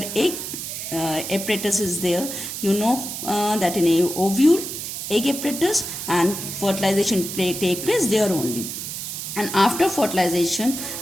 egg apparatus is there, you know that in a ovule, egg apparatus and fertilization take place there only. And after fertilization,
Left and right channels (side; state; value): right; noise; hiss, 6 dB below the sound